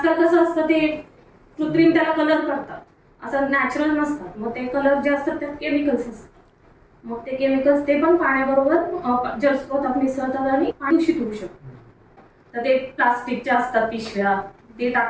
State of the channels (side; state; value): both; identical; correlation 1.00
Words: कसं असतं ते कृत्रिम त्याला कलर करतात, असं नॅचरल नसतात. मग ते कलर जे असतात त्यात केमिकल्स असतात. मग ते केमिकल्स ते पण पाण्याबरोबर जलस्रोतात मिसळतात आणि पाणी दूषित होऊ शकतं. तर ते प्लास्टिकचे असतात पिशव्या ते